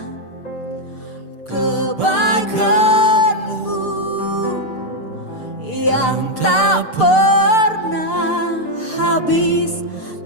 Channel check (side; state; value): right; late; 6.7 ms